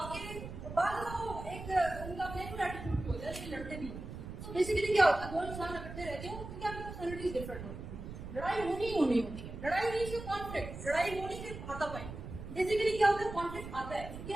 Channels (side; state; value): right; noise; rumble, 10 dB below the sound